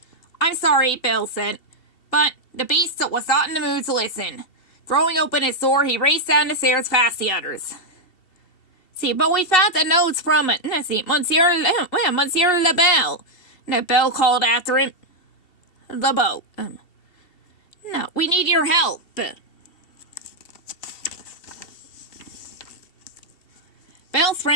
I'm sorry, Belle said. But the beast was not in the mood to listen. Throwing open his door, he raced down the stairs past the others. But we found the notes from Monsieur Belle. Belle called after him. LeBeau. No, we need your help. Belle's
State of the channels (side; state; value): right; late; 2.7 ms